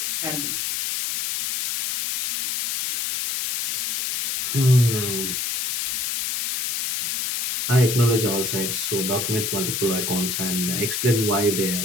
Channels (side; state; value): left; noise; hiss, 1 dB below the sound